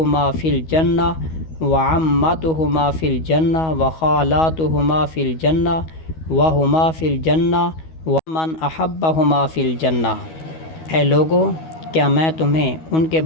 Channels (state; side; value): late; right; 12 ms